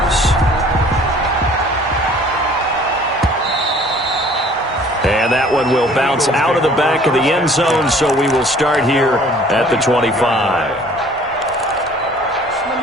And that one will bounce out of the back of the end zone, so we will start here at the 25.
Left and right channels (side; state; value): both; normal; correlation 0.53